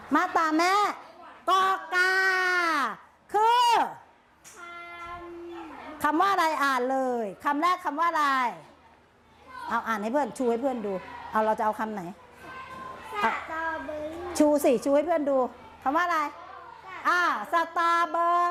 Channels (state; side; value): identical; both; correlation 1.00